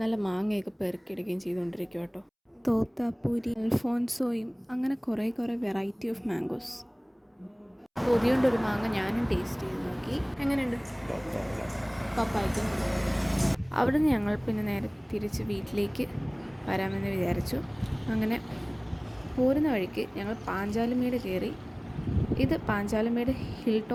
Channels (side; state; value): both; identical; correlation 1.00